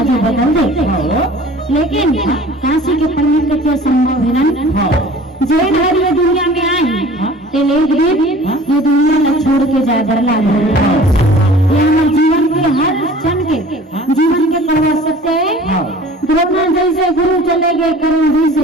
बदल दे, लेकिन काशी के पंडित कहते असंभव है ना। जैन हर ये दुनिया में आई ते ये दुनिया न छोड़ के जाए डरला ये हमारे जीवन के हर क्षण के जीवन के करवा सकते हैं। द्रोणा जैसे गुरु चले गए करुण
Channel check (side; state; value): both; normal; correlation 0.46